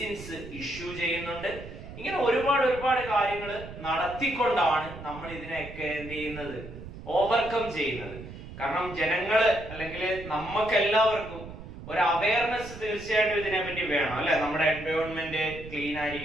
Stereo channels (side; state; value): right; noise; rumble, 13 dB below the sound